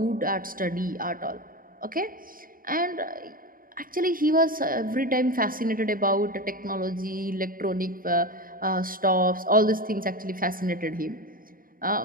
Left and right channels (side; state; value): left; late; 0.41 ms